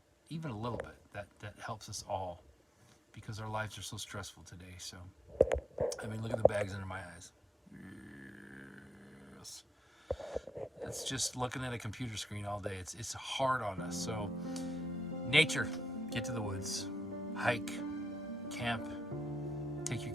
even a little bit, that helps us all, because our lives are so stressful today. So, I mean, look at the bags under my eyes. Yes. It's just looking at a computer screen all day. It's hard on us. So, nature, get to the woods, hike, camp, take your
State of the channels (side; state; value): both; normal; correlation 0.83